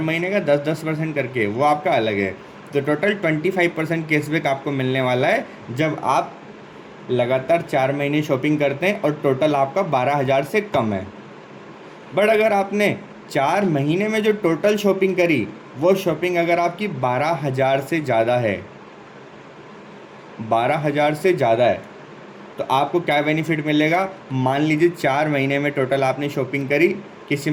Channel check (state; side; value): identical; both; correlation 1.00